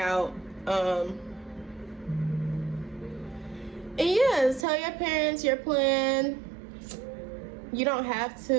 And yeah, tell your parents your plan. You don't have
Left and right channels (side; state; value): left; drops out; at 4.7 s